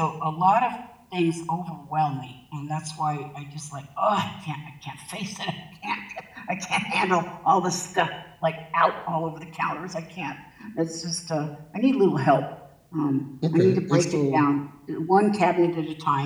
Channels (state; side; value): identical; both; correlation 1.00